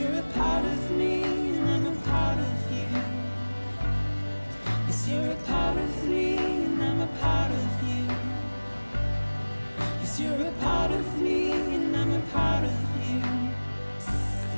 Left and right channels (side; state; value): both; inverted; correlation -1.00